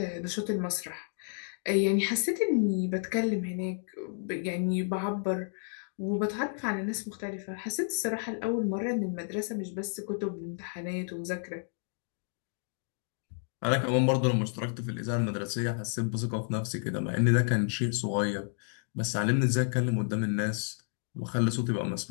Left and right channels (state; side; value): silent; right; digital silence